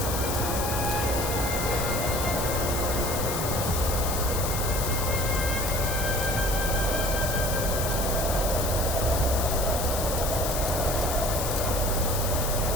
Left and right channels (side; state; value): left; noise; hiss, 4 dB below the sound